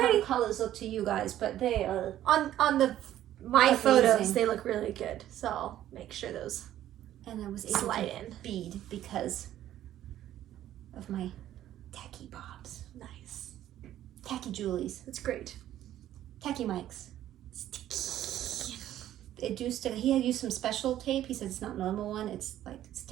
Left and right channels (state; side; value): quieter; left; 12.5 dB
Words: pretty. the colors look to you guys, but they are. On the my Amazing. photos, they look really good. So I'll make sure those And I was able slide to in. bead because of my tacky bobs. Nice. Tacky Julies. That's great. Tacky mics. Sticky. It do stick. He had used some special tape. He said it's not normal one. It's like